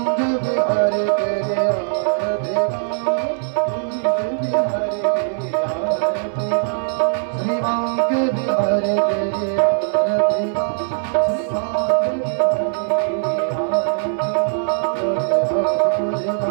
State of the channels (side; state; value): left; silent; 59 dB below the other